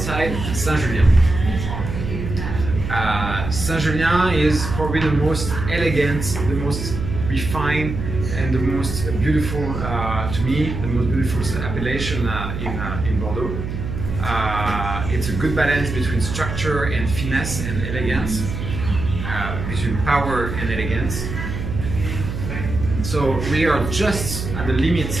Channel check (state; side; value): noise; right; hum, 6 dB below the sound